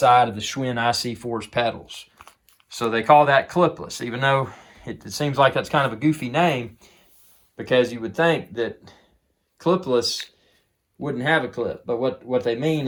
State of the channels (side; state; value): both; identical; correlation 1.00